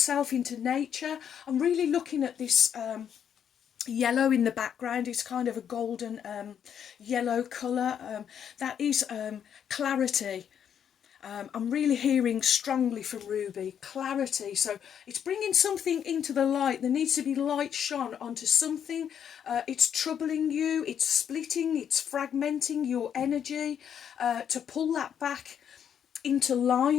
into nature. I'm really looking at this yellow in the background. It's kind of a golden yellow colour. That is clarity. I'm really hearing strongly from Ruby, clarity. So it's bringing something into the light. There needs to be light shone onto something. It's troubling you, it's splitting, it's fragmenting your energy, to pull that back into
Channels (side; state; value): right; quieter; 8.6 dB